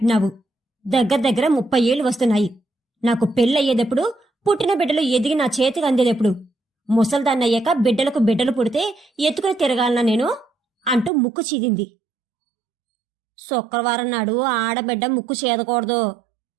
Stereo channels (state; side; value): drops out; left; at 11.1 s